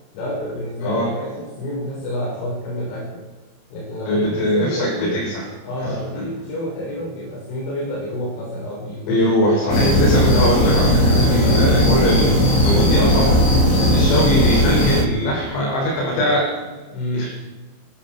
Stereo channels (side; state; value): right; late; 30 ms